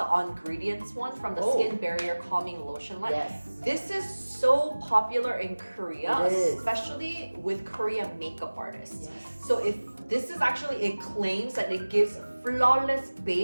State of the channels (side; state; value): both; inverted; correlation -1.00